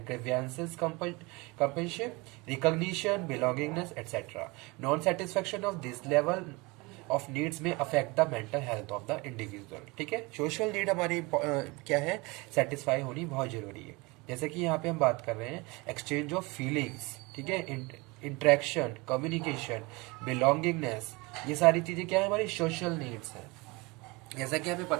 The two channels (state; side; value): quieter; left; 25.4 dB